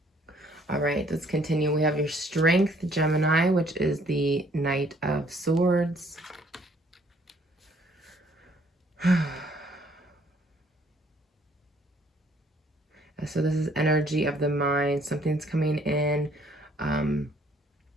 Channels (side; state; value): both; normal; correlation 0.62